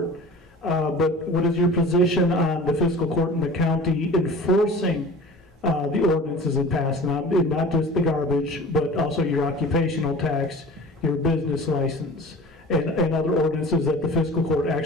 But what is your position on the fiscal court in the county enforcing the ordinances it passed, not just the garbage, but also your occupational tax, your business license, and other ordinances that the fiscal court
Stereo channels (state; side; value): normal; both; correlation 0.40